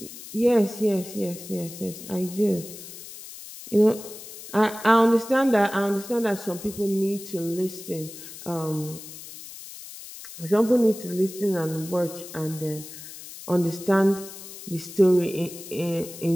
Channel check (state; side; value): noise; left; hiss, 14 dB below the sound